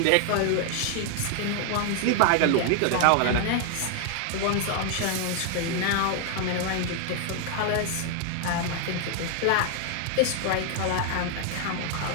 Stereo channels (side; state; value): both; different; correlation 0.00